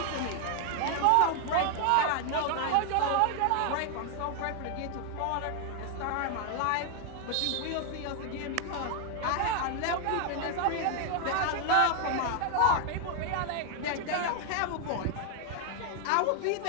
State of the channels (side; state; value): both; different; correlation 0.00